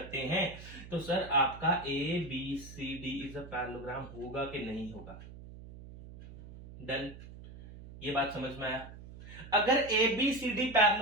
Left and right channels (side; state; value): right; noise; hum, 15 dB below the sound